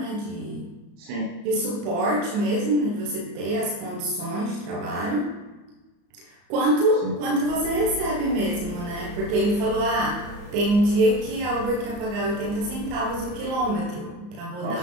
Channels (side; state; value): left; late; 34 ms